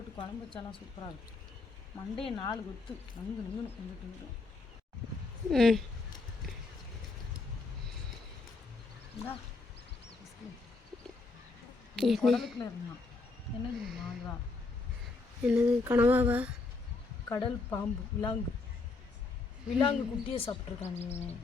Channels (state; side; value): quieter; right; 3.7 dB